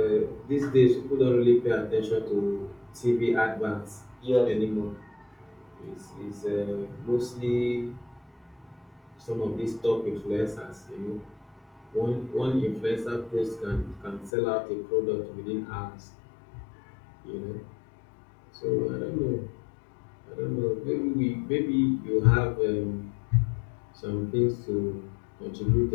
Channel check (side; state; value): right; drops out; at 14.3 s